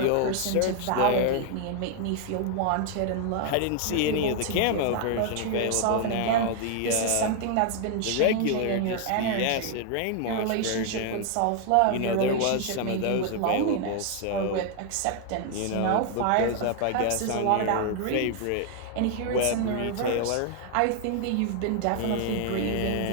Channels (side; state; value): both; different; correlation 0.00